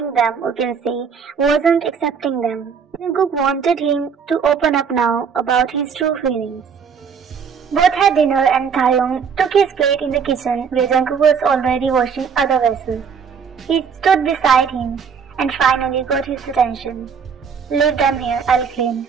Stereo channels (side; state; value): left; quieter; 6.4 dB